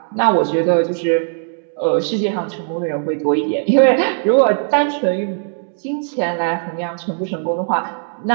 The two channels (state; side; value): silent; left; 67 dB below the other